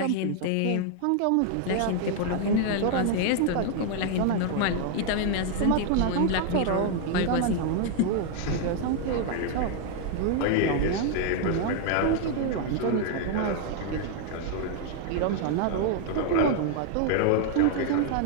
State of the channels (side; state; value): both; different; correlation 0.00